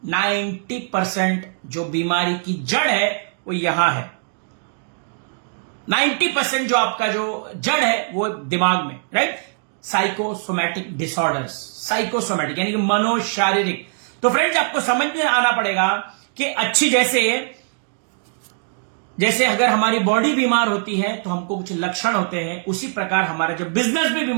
90% जो बीमारी की जड़ है वो यहां है। 90% जो आपका जो जड़ है वो दिमाग में, राइट। साइकोसोमैटिक डिसऑर्डर्स, साइकोसोमैटिक यानी कि मनोशारीरिक। तो फ्रेंड्स, आपको समझ में आना पड़ेगा कि अच्छी जैसे अगर हमारी बॉडी बीमार होती है तो हमको कुछ लक्षण होते हैं, उसी प्रकार हमारा जब बिजनेस भी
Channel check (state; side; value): silent; left; digital silence